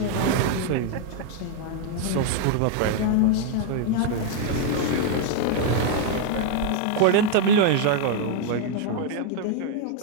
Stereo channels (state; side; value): different; both; correlation 0.00